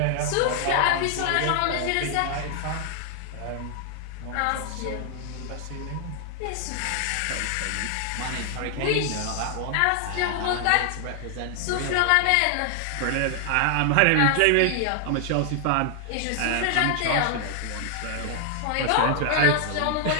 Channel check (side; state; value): both; different; correlation 0.00